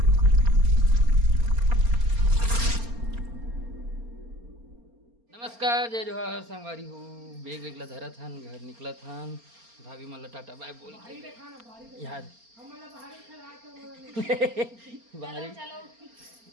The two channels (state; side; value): late; left; 4.3 ms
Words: नमस्कार जय जोहार संगवारी हो. बेग वेगला धरा था घर निकला था. भाभी मला टाटा बाय बोल यार बाहरी.